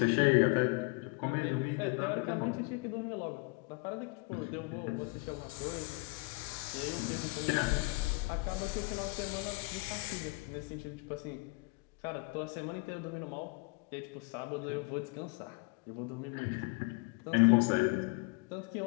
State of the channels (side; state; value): right; quieter; 27.2 dB